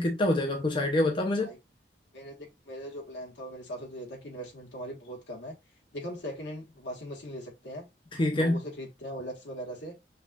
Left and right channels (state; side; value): normal; both; correlation 0.64